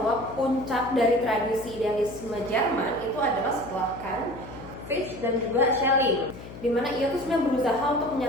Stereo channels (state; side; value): noise; left; hum, 14 dB below the sound